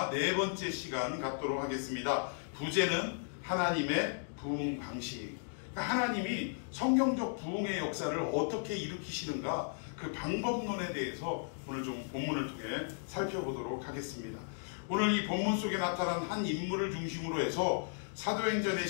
네 번째 시간 갖도록 하겠습니다. 부제는 하나님의 부흥 방식. 하나님이 성경적 부흥의 역사를 어떻게 일으키시는가, 그 방법론에 대해서 오늘 좀 본문을 통해 살펴보도록 하겠습니다. 오늘 이 본문 속에 나타난 한 인물을 중심으로 해서 사도행전의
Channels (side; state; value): right; silent; digital silence